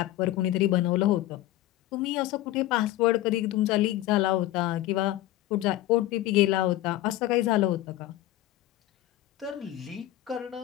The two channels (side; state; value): right; quieter; 15.2 dB